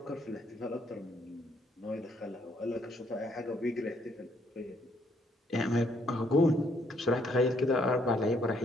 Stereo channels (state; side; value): normal; both; correlation 0.69